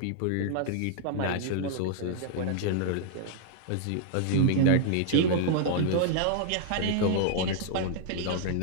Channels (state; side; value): different; both; correlation -0.01